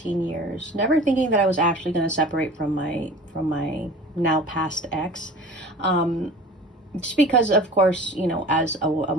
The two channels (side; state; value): both; normal; correlation 0.41